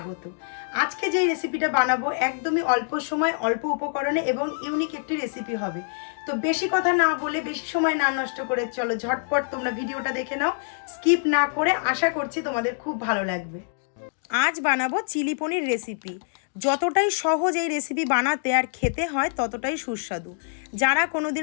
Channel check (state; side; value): silent; right; digital silence